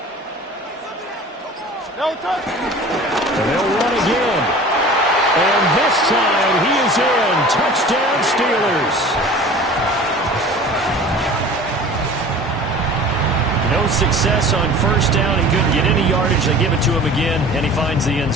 And they'll run again. And this time he is in. Touchdown Steelers. No success on 1st down. He couldn't get any yardage. They give it to him again, and he finds the end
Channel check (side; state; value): both; normal; correlation 0.42